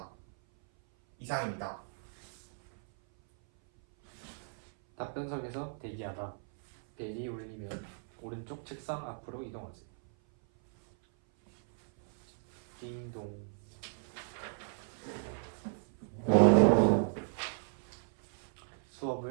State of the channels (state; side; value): silent; left; 55 dB below the other